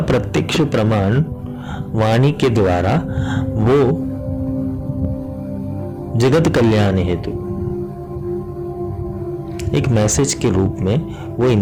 प्रत्यक्ष प्रमाण वाणी के द्वारा वो जगत कल्याण हेतु एक मैसेज के रूप में वो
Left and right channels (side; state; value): both; identical; correlation 1.00